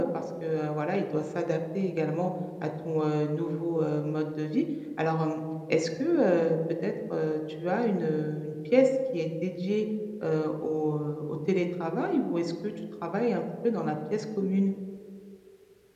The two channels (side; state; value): both; identical; correlation 1.00